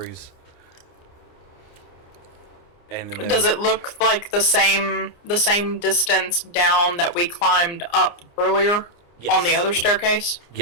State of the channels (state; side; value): late; right; 29 ms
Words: And then Does it look like the same distance down that we climbed up earlier Yes. on the other staircase?